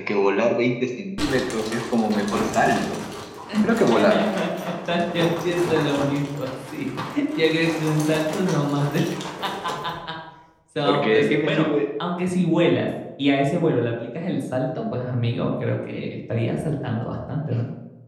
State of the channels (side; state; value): both; identical; correlation 1.00